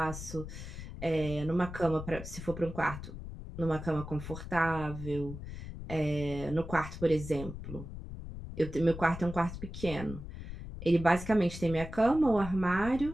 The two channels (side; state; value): left; noise; rumble, 10 dB below the sound